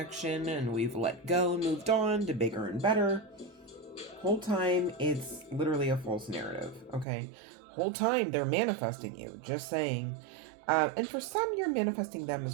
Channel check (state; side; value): drops out; left; at 7.1 s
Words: and we've let go and moved on to bigger and better. Whole time it's literally a false narrative, okay? Whole time they're manifesting you, just saying. And for some you're manifesting them as